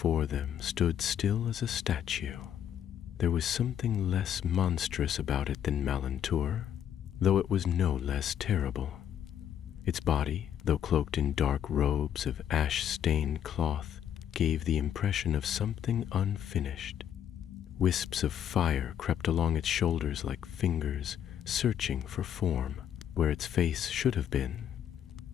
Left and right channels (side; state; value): right; quieter; 9.6 dB